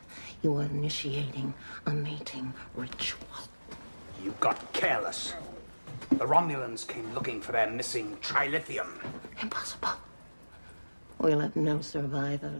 you are initiating a mating ritual. You got careless. The Romulans came looking for their missing trilithium. Impossible. We'll have no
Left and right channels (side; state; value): both; inverted; correlation -1.00